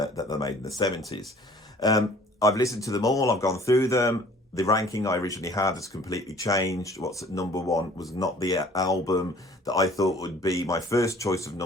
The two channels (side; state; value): both; normal; correlation 0.52